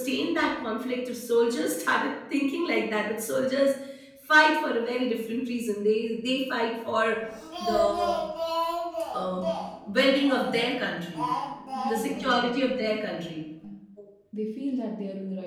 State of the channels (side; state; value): both; identical; correlation 1.00